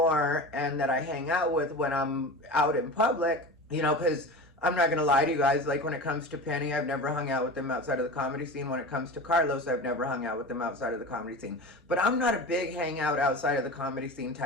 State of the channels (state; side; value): normal; both; correlation 0.30